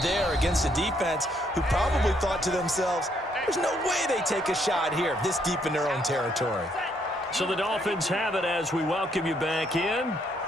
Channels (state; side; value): normal; both; correlation 0.71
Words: there against a defense who probably thought to themselves, there's no way they take a shot here this deep in their own territory. So the Dolphins have it as we welcome you back in.